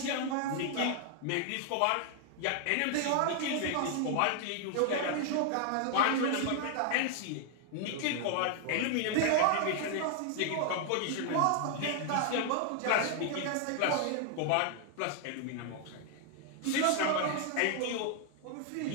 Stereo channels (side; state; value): both; different; correlation 0.00